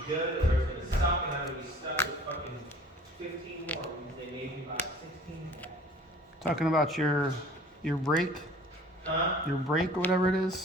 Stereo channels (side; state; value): both; normal; correlation 0.49